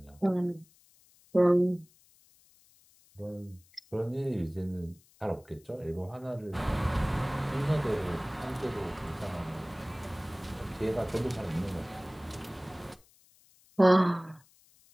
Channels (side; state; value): left; noise; hiss, 29 dB below the sound